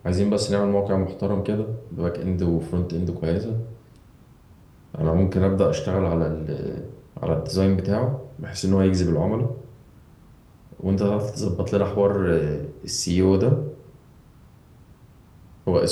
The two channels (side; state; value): both; identical; correlation 1.00